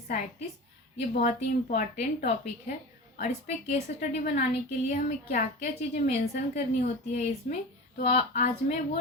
ये बहुत ही इम्पॉर्टेंट टॉपिक है और इस पे केस स्टडी बनाने के लिए हमें क्या क्या चीज़ें मेंशन करनी होती है इसमें, तो आज मैं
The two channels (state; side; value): normal; both; correlation 0.31